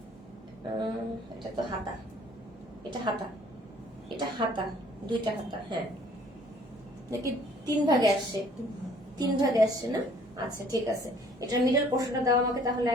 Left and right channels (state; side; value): normal; both; correlation 0.57